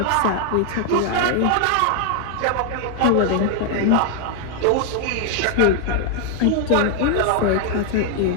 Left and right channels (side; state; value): both; different; correlation 0.00